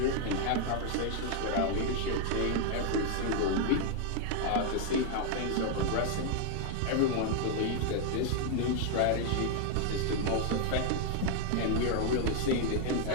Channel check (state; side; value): different; both; correlation 0.00